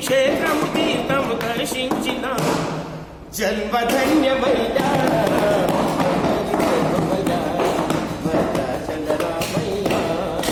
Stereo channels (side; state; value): both; identical; correlation 1.00